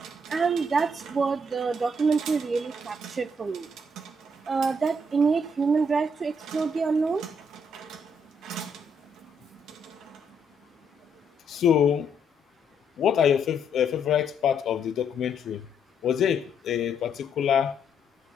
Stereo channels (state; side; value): normal; both; correlation 0.73